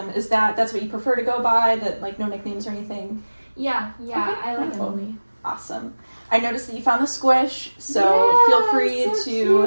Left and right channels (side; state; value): both; inverted; correlation -1.00